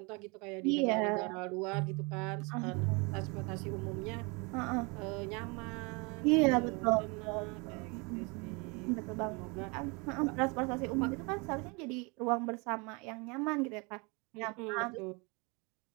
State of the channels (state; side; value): quieter; left; 29.6 dB